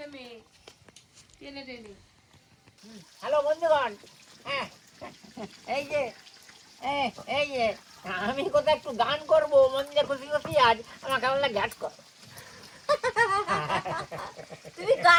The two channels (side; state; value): both; identical; correlation 1.00